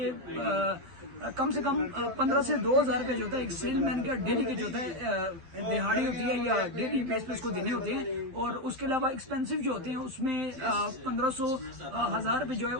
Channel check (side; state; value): left; late; 12 ms